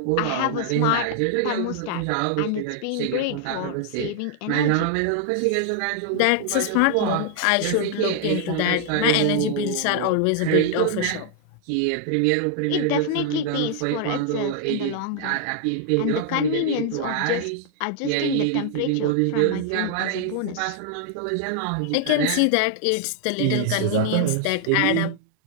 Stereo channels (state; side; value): different; both; correlation 0.00